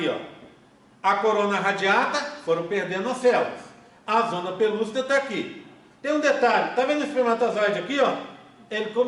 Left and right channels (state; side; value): identical; both; correlation 1.00